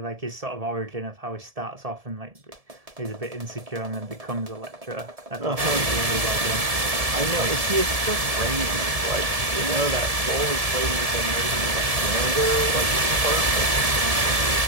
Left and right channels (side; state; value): left; late; 1.7 ms